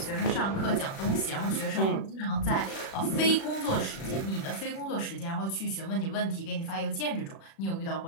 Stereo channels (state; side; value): late; right; 36 ms